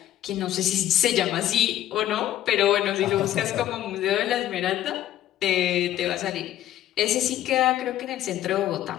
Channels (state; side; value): quieter; right; 12.8 dB